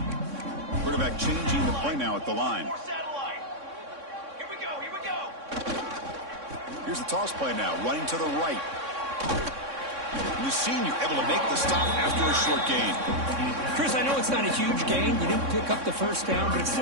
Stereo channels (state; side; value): late; left; 3.6 ms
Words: Quarterback changing the play now at the line. Here we go. Here's the toss play now, running to the right. And the senior able to make the stop after a short gain. Chris, I know it's not a huge gain. You didn't pick up the first down, but it's